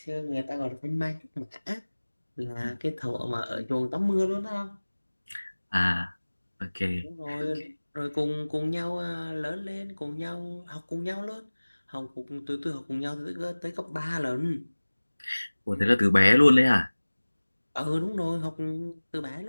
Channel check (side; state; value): both; inverted; correlation -1.00